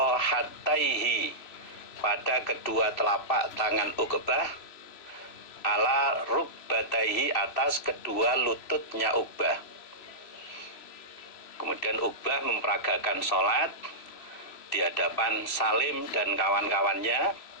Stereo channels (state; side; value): late; right; 3.0 ms